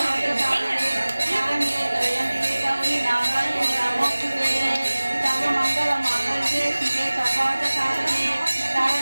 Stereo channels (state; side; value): inverted; both; correlation -1.00